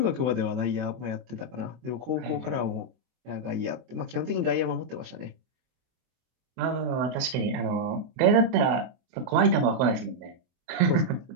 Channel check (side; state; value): left; late; 24 ms